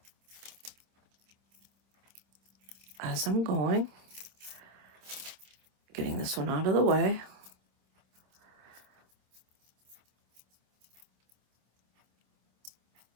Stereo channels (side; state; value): left; late; 26 ms